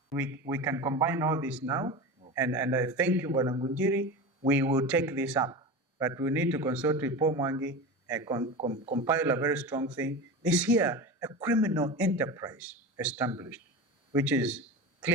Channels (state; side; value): normal; both; correlation 0.27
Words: We can combine all this now, and I thank you, Bwana Ngunjiri. We will take this up, but we need to consult with Paul Mwangi and compile a very strong thing. This here, a criminal enterprise established, which is